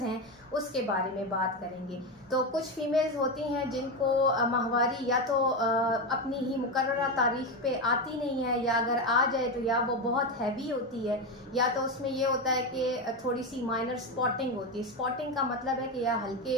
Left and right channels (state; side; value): normal; both; correlation 0.13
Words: हैं उसके बारे में बात करेंगे। तो कुछ फीमेल्स होती हैं जिनको माहवारी या तो अपनी ही मुकर्ररा तारीख पे आती नहीं है, या अगर आ जाए तो या वो बहुत हैवी होती है, या तो उसमें ये होता है कि थोड़ी सी माइनर स्पॉटिंग होती है। स्पॉटिंग का मतलब है कि या